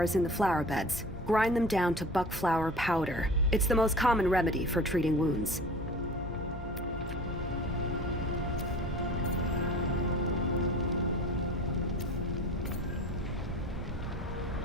in the flower beds. Grind them down to buck flower powder. It's the most common remedy for treating wounds.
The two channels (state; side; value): normal; both; correlation 0.40